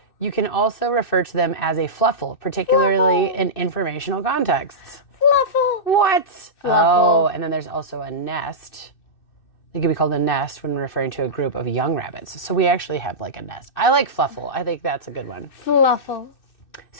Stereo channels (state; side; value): late; right; 2.6 ms